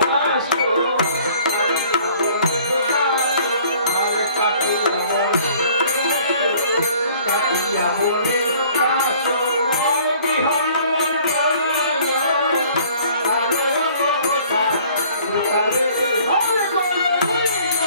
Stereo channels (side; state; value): both; inverted; correlation -0.54